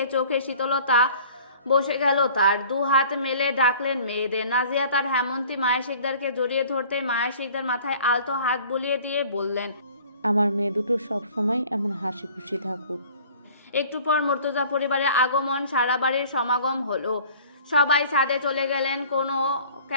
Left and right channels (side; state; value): both; inverted; correlation -0.49